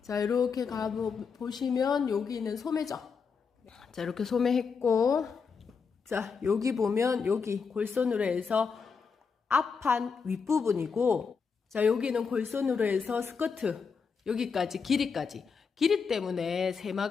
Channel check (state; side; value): quieter; right; 5.6 dB